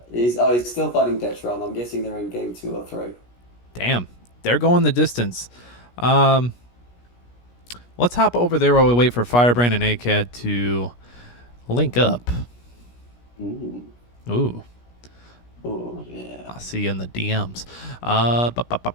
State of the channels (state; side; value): late; right; 17 ms